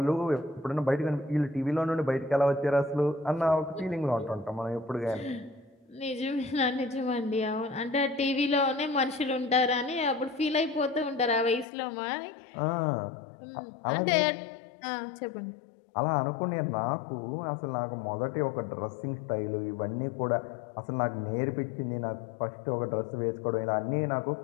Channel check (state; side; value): drops out; right; at 11.7 s